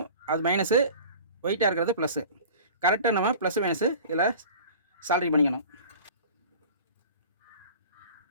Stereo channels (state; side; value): inverted; both; correlation -0.41